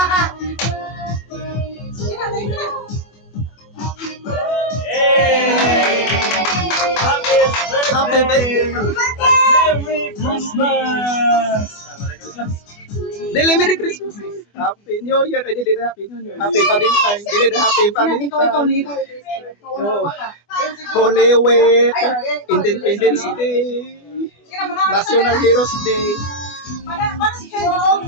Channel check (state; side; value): late; right; 24 ms